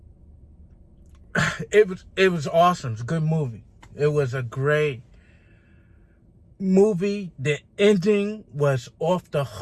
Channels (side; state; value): both; identical; correlation 1.00